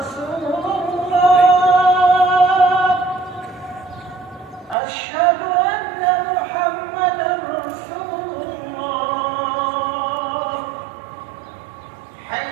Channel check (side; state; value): left; drops out; at 4.8 s